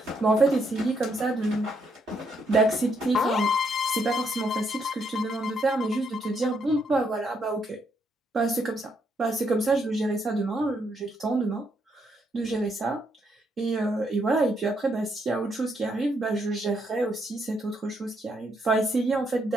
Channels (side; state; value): both; normal; correlation 0.75